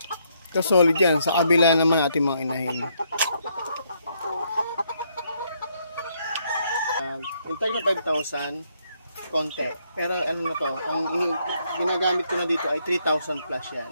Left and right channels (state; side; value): inverted; both; correlation -0.73